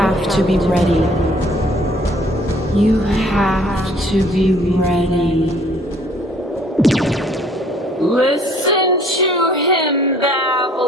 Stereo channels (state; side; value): normal; both; correlation 0.58